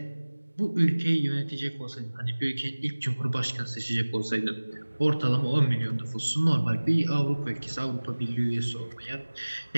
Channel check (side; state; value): both; inverted; correlation -1.00